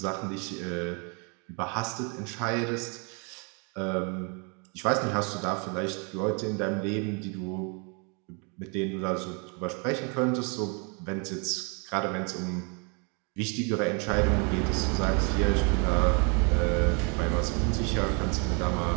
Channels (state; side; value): quieter; left; 34.8 dB